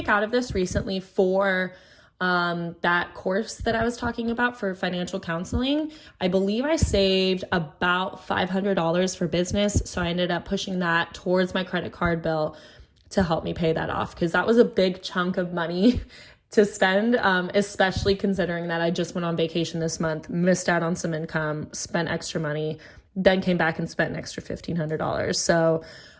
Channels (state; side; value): identical; both; correlation 1.00